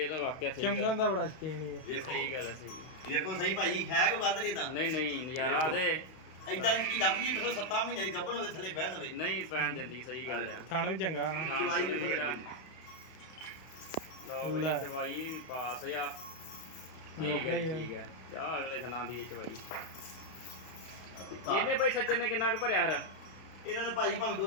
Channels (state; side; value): late; right; 32 ms